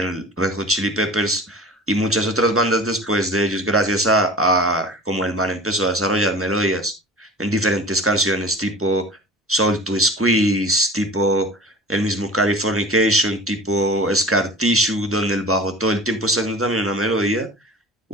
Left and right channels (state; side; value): normal; both; correlation 0.38